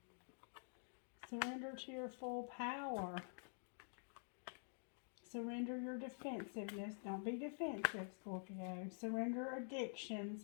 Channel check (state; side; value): silent; right; digital silence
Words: Surrender to your full power. Surrender your defensiveness. Don't be defensive, Scorpio. Surrender